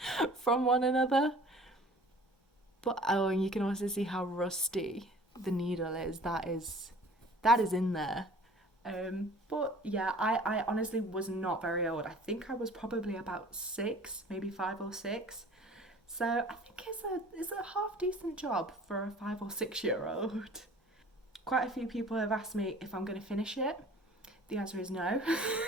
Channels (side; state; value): both; normal; correlation 0.47